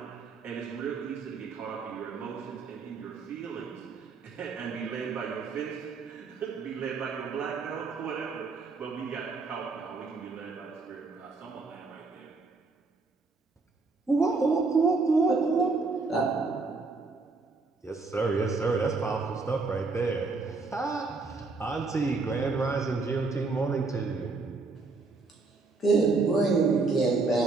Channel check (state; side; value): quieter; left; 4.0 dB